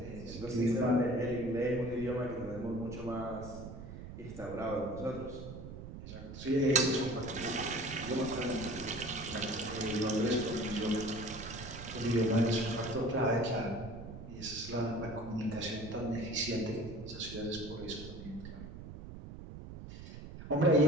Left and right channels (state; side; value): noise; right; rumble, 11 dB below the sound